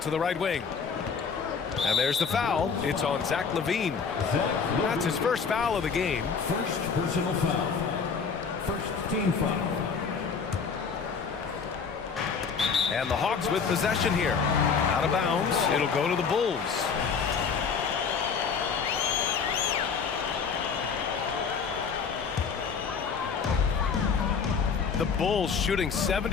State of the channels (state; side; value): quieter; right; 5.8 dB